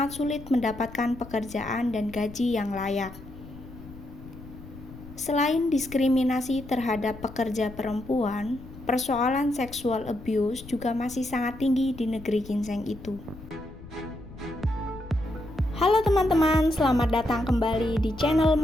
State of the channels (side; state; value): left; noise; rumble, 16 dB below the sound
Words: sulit mendapatkan pekerjaan dan gaji yang layak. Selain diskriminasi terhadap pekerja perempuan, persoalan sexual abuse juga masih sangat tinggi di negeri ginseng itu. Halo teman-teman, selamat datang kembali di channel